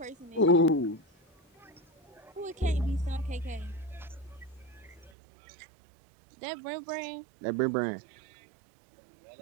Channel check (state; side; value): drops out; left; at 5.1 s